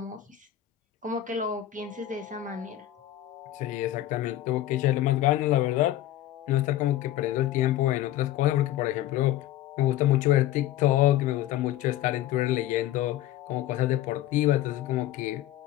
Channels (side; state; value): right; quieter; 13.4 dB